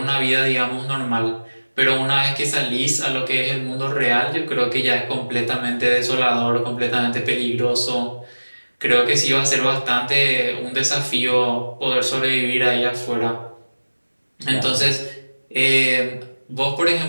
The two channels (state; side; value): inverted; both; correlation -1.00